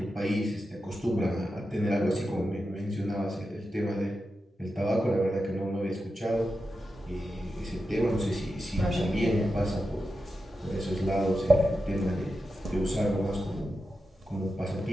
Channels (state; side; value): normal; both; correlation 0.89